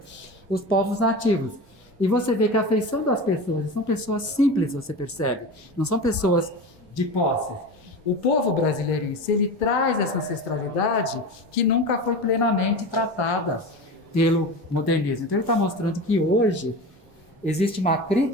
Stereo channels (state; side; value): normal; both; correlation 0.28